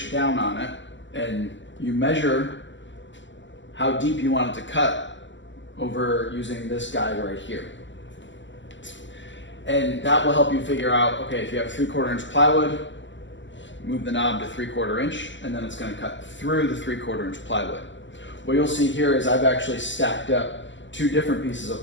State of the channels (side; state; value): right; late; 0.54 ms